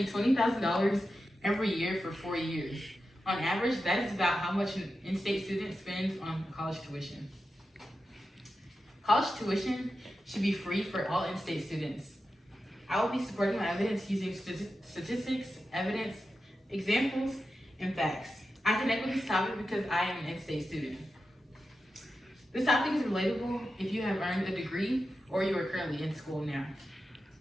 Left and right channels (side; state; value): both; normal; correlation 0.91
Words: $20,000 every year for 4 years. On average, that is about how much an in-state student spends on college tuition. College tuition should be free for all in-state students. I will be supporting my evidence using statistics, evidence, examples, and facts. I connect with this topic because I am an in-state student. This topic is relatable if you have earned a degree or you are currently in school now.